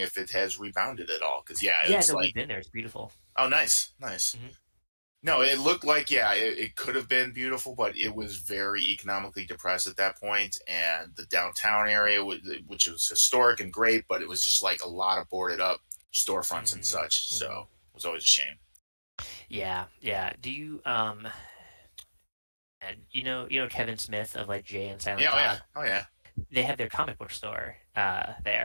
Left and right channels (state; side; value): inverted; both; correlation -1.00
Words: it has rebounded at all because yeah, Yeah, it's no, we've like been there. It's beautiful. oh nice, nice. Hmm. No, it looked like yeah, it could have been beautiful, but it was very economically depressed at that point, and the downtown area, which was historic and great, but it was just like a lot of boarded up storefronts and Hmm, such. So hmm. it was always a shame. Yeah, yeah. Do you and you know Kevin Smith of like Jay and Silent Yeah, oh yeah, Bob? oh yeah. They have their comic book store